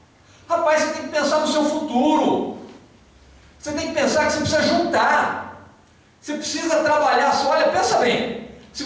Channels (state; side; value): identical; both; correlation 1.00